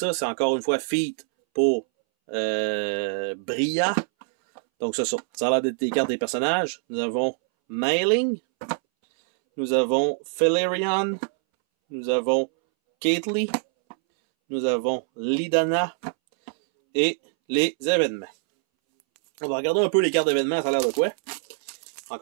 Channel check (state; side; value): silent; left; 62 dB below the other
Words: C'est encore une fois feat pour Bria. Donc ça a l'air d'être des cartes des personnages. Nous avons Mailing, nous avons Felerion, nous avons Caitlyn, nous avons Lidana et les événements. On va regarder un peu les cartes d'événements, ça a l'air de quoi?